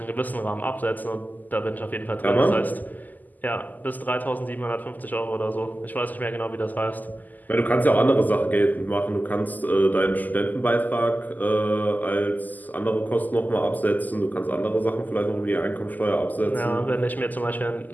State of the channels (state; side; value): late; right; 0.083 ms